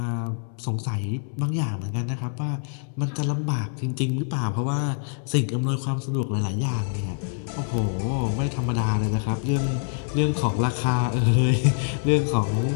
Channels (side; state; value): right; silent; digital silence